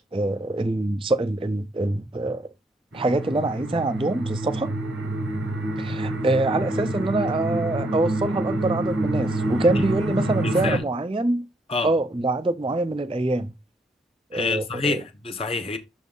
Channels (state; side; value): normal; both; correlation 0.71